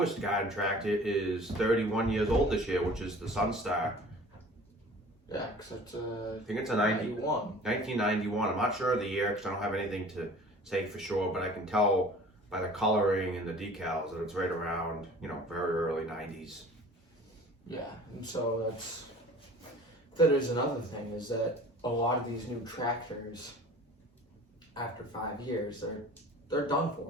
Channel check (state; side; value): normal; both; correlation 0.45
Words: garden tractor is 31 years old this year, which is the Sunstar. Yeah, because it's I think it's a 1991. I'm not sure of the year because I don't have anything to say for sure, but I can tell by the coloring and the decals that it's right around, very early 90s. Yeah, and so that is another thing, is that a lot of these new tractors, after 5 years, they're done